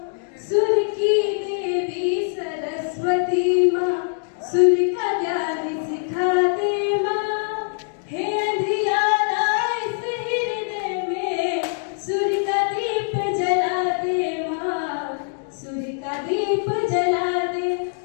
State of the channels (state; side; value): silent; right; digital silence